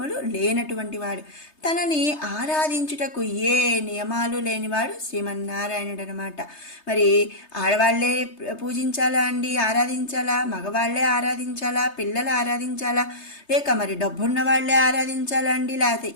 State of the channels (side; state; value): right; late; 3.3 ms